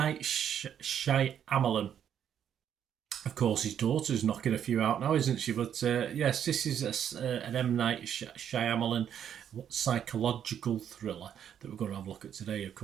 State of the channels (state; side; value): quieter; left; 9.2 dB